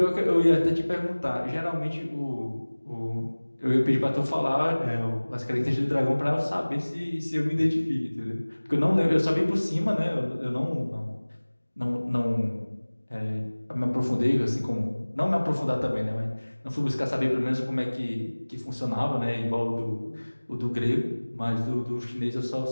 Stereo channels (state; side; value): inverted; both; correlation -1.00